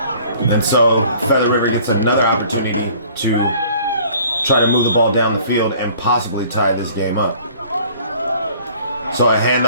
And so Feather River gets another opportunity to try to move the ball down the field and possibly tie this game up. So a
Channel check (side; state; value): both; inverted; correlation -0.52